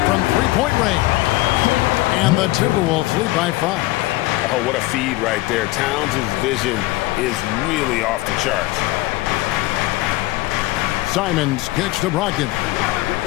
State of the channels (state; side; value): quieter; right; 19.2 dB